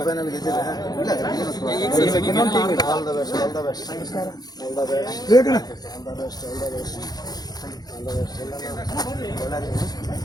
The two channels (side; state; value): right; late; 0.19 ms